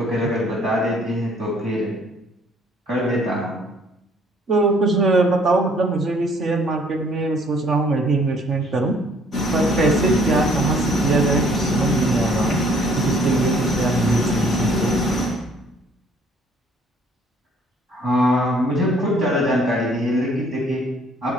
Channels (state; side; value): normal; both; correlation 0.60